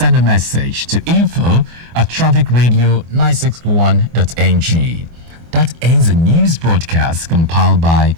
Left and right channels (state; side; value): late; left; 24 ms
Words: a message to info@trafficradio961.ng. That ends the news broadcast compiled by